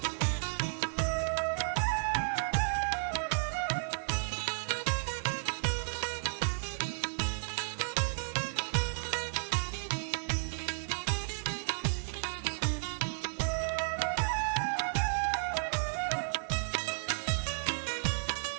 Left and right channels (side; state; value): left; silent; digital silence